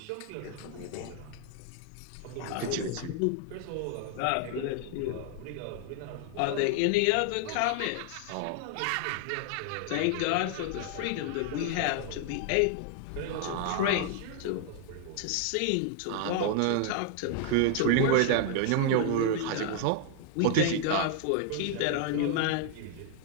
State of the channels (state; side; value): different; both; correlation 0.00